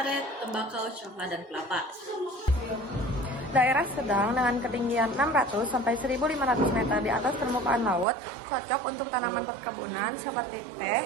tembakau, coklat, dan kelapa. Daerah sedang dengan ketinggian 600 sampai 1.500 meter di atas permukaan laut, cocok untuk tanaman perkebunan seperti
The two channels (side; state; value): left; drops out; at 8.1 s